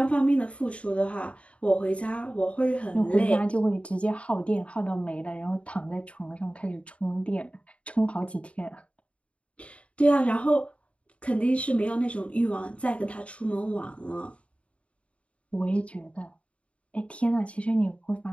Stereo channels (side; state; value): right; late; 0.062 ms